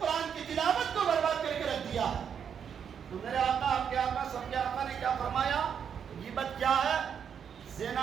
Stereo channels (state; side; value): quieter; left; 7.7 dB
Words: کی تلاوت کو برباد کر کے رکھ دیا ہے۔ تو میرے آقا، آپ کے آقا، سب کے آقا نے کیا فرمایا؟ غیبت کیا ہے؟